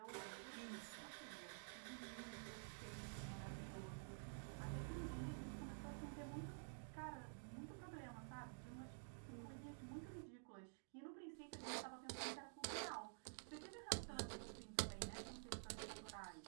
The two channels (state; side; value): silent; left; digital silence